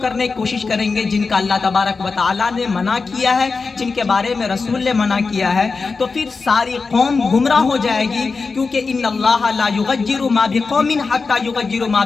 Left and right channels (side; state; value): right; quieter; 4.4 dB